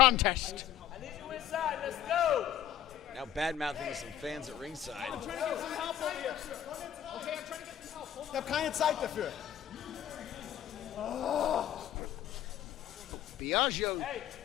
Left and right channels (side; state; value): right; quieter; 10.7 dB